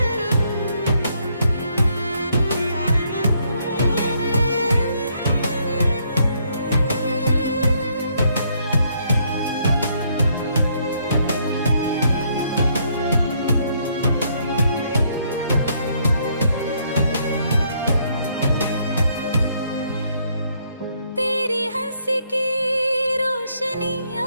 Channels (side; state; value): both; inverted; correlation -0.70